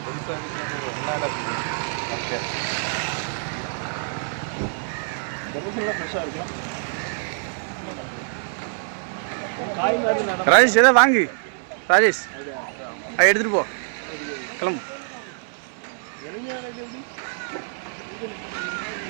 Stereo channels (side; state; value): left; silent; 62 dB below the other